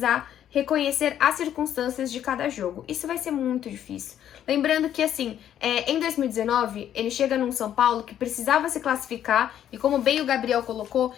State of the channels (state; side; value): quieter; right; 10.5 dB